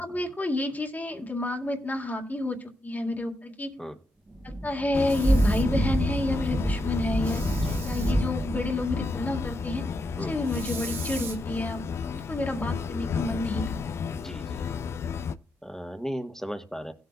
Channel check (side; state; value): both; normal; correlation 0.83